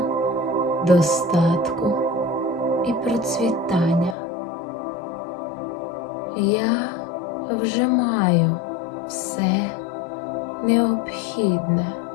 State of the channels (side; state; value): right; drops out; at 4.2 s